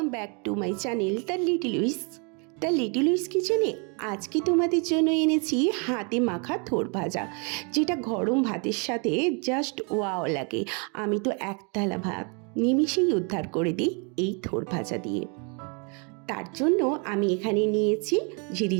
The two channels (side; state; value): left; quieter; 35.0 dB